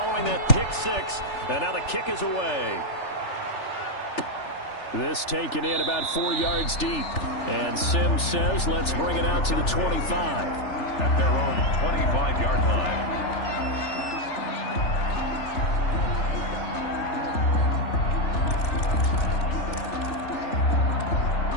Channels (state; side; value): late; right; 3.4 ms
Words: that pick six. And now the kick is away. This taken in about 4 yards deep. And Sims says, let's bring it out to the 25. At their own 25-yard line.